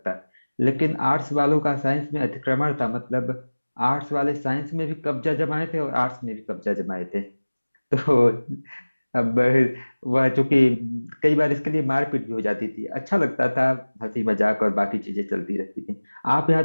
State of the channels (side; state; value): both; inverted; correlation -1.00